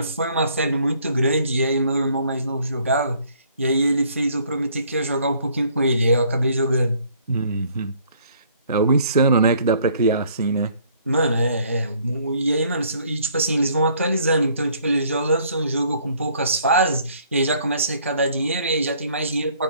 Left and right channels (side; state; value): both; inverted; correlation -0.62